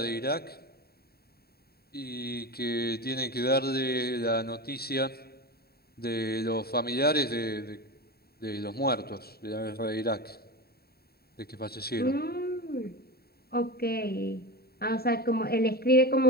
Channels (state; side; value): late; right; 0.45 ms